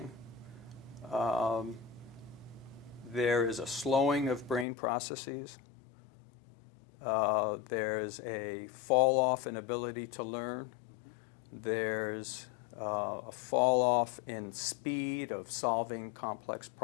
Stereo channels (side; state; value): right; drops out; at 4.7 s